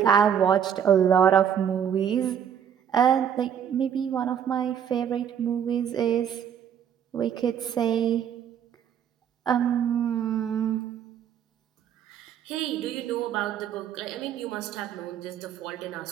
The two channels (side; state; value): left; quieter; 8.7 dB